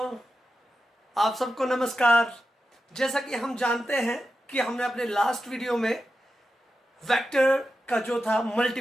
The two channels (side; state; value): both; normal; correlation 0.90